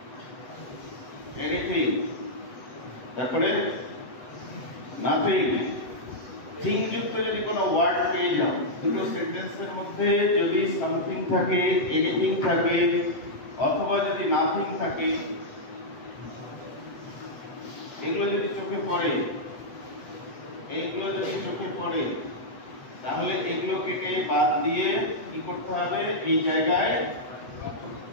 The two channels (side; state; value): right; late; 8.1 ms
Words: এনিথিং, তারপরে নাথিং, থিং যুক্ত যদি কোনো ওয়ার্ড পেয়ে যাও, দুটো সেন্টেন্সের মধ্যে যদি সামথিং থাকে, এনিথিং থাকে, অথবা যদি নাথিং থাকে, এগুলো যদি চোখে পড়ে, এইগুলো যদি চোখে পড়ে, তাহলে এগুলো কেটে বাদ দিয়ে কি করতে হবে, এই জায়গায়